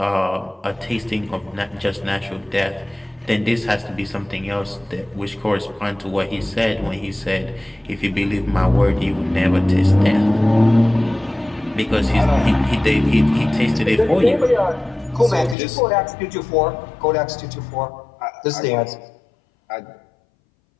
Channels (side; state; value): right; drops out; at 15.6 s